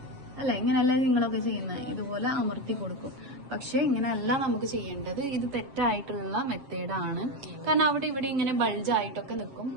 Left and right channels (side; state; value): left; late; 7.6 ms